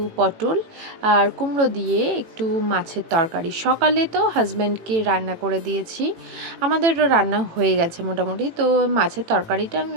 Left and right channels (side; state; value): left; late; 18 ms